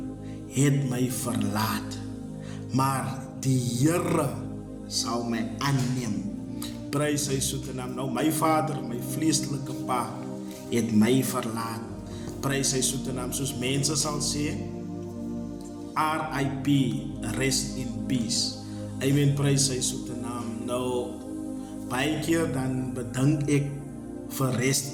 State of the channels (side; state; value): both; identical; correlation 1.00